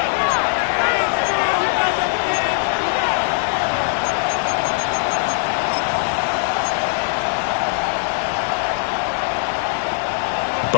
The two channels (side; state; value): right; silent; 66 dB below the other